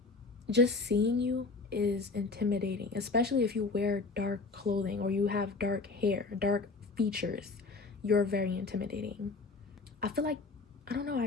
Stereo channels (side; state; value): right; quieter; 4.0 dB